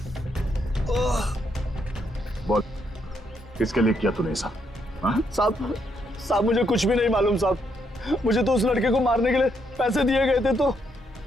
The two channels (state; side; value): normal; both; correlation 0.76